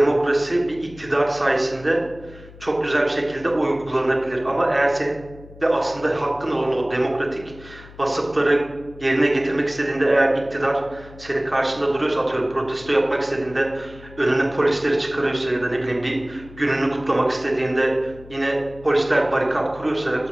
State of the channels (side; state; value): left; noise; hum, 19 dB below the sound